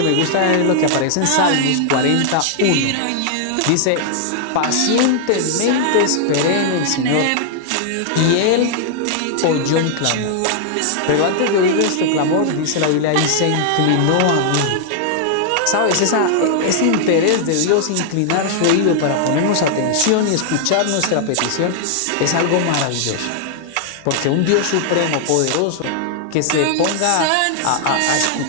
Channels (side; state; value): both; different; correlation 0.00